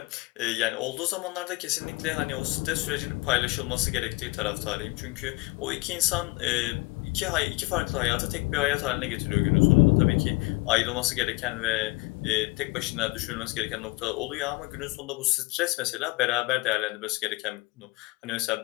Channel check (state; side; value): quieter; right; 24.1 dB